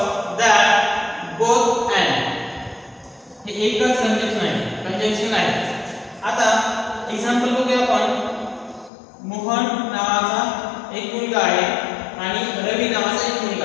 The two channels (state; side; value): drops out; right; at 8.9 s